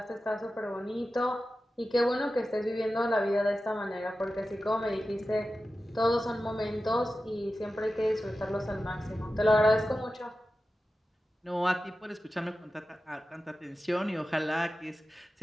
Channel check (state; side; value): normal; both; correlation 0.93